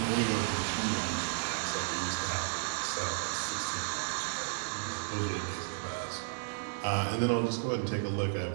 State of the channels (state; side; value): silent; left; 56 dB below the other